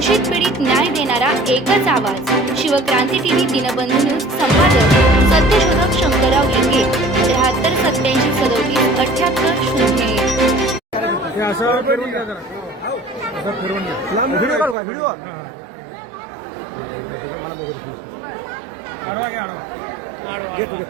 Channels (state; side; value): drops out; left; at 14.8 s